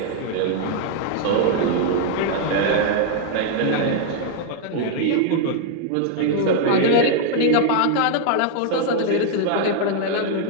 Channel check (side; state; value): both; different; correlation 0.00